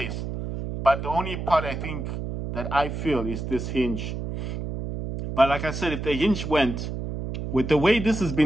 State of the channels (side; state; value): right; noise; hum, 5 dB below the sound